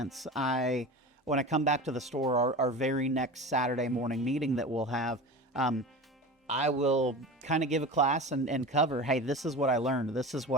when I come back to the store, our very next Saturday morning meeting that we'll have, I will kind of give a class and cover, hey, this is what I learned, this is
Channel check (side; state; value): both; normal; correlation 0.31